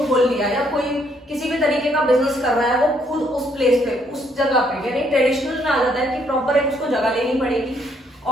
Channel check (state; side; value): normal; both; correlation 0.69